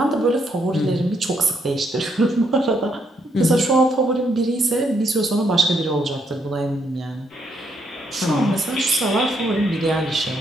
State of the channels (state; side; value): normal; both; correlation 0.75